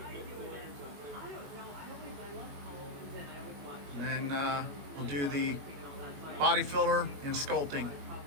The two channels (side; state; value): left; late; 21 ms